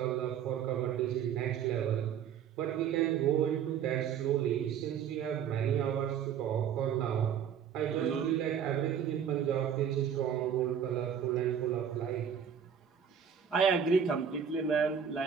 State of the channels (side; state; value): left; quieter; 8.2 dB